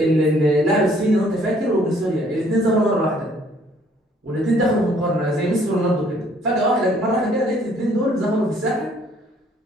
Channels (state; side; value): normal; both; correlation 0.61